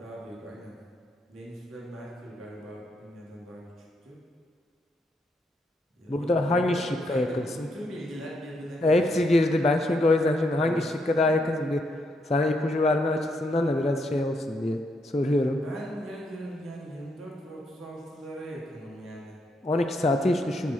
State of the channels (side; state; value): both; normal; correlation 0.77